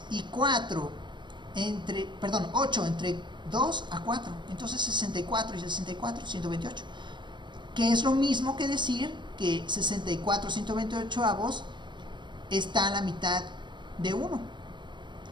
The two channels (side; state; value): left; late; 0.22 ms